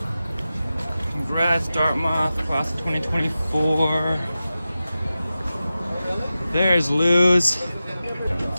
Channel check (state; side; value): inverted; both; correlation -0.94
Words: Congrats, Dartmouth, class of 2024. There's Lou's.